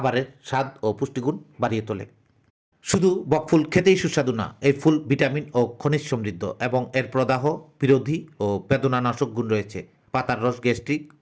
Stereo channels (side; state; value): both; identical; correlation 1.00